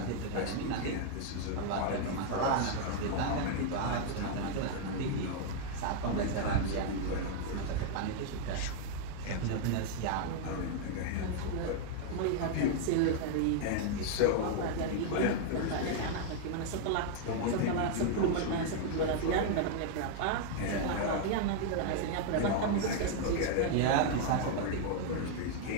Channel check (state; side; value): different; both; correlation 0.00